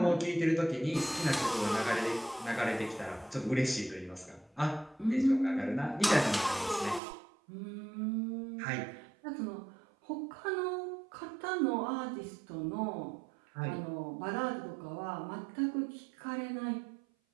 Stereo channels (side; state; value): left; drops out; at 7.0 s